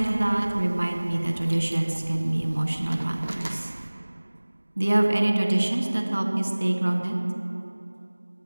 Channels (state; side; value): inverted; both; correlation -1.00